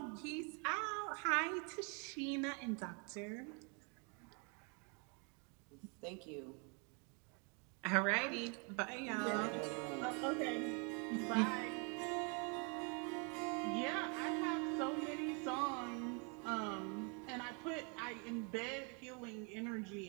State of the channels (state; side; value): quieter; left; 35.4 dB